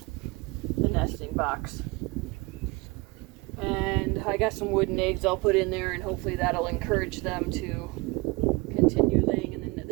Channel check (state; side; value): quieter; left; 25.1 dB